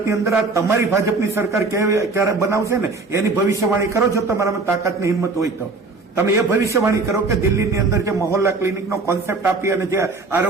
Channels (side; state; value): left; quieter; 3.8 dB